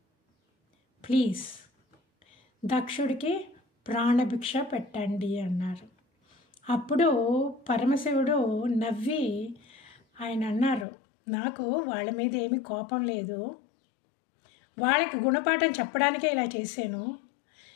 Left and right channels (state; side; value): drops out; right; at 10.9 s